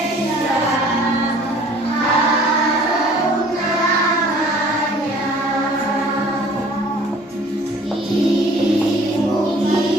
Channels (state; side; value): normal; both; correlation 0.52